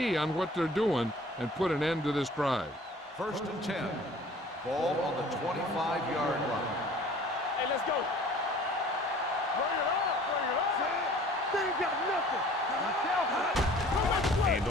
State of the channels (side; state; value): both; normal; correlation 0.49